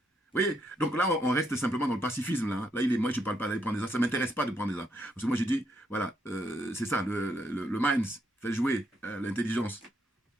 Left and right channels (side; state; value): both; normal; correlation 0.76